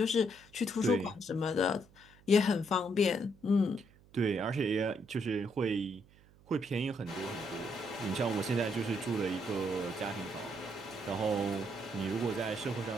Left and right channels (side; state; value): right; noise; hum, 27 dB below the sound